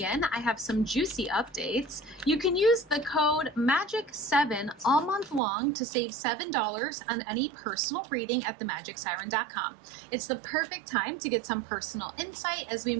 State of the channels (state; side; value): drops out; left; at 5.4 s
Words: I have some juicy updates. You can use the code MAGIC7 all month long to save $7 on any personal reading at themagicsiren.com. It's the perfect time to get some personal insight as we